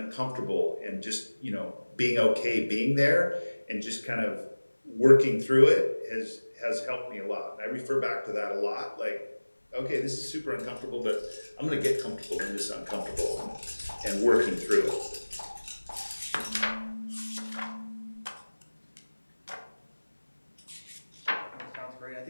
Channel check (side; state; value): both; inverted; correlation -1.00